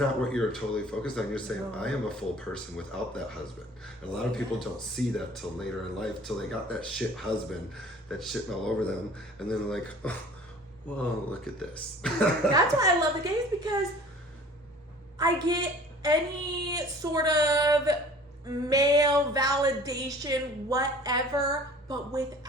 what you're totally focused on. You're saying, I am a full person without that husband. And a lot of people don't see that till later in life, till they got that shit husband that's shitting all over them, and then they're like, oh, well, look at this. That's why I love the gays, because I get any sort of male validation, whatever, but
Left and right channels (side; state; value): both; normal; correlation 0.48